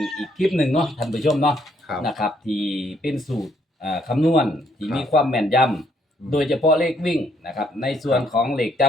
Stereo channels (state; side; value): normal; both; correlation 0.70